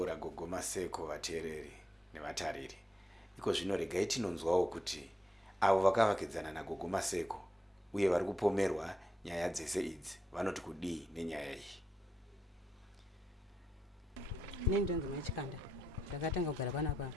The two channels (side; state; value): both; normal; correlation 0.83